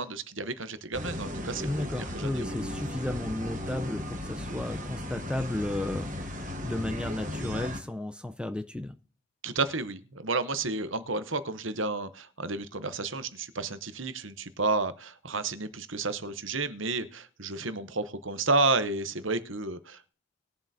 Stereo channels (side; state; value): both; normal; correlation 0.13